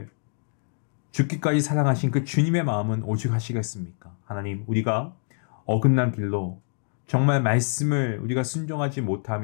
죽기까지 사랑하신 그 주님의 마음은 오죽하시겠습니까? 하나님, 우리가 어긋난 길로 정말 말씀을 우리가 순종하지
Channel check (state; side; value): silent; right; 61 dB below the other